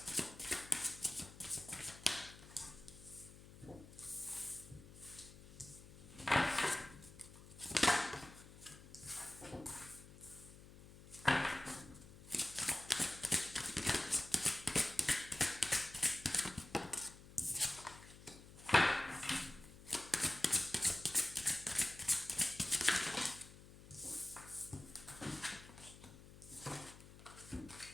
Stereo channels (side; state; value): left; noise; hum, 18 dB below the sound